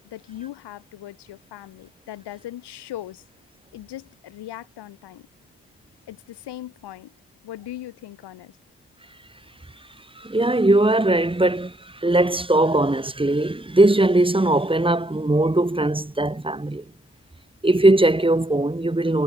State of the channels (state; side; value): normal; both; correlation 0.72